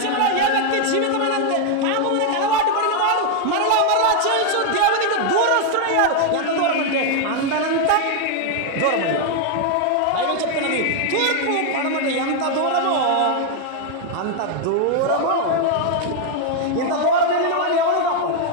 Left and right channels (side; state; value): both; different; correlation 0.00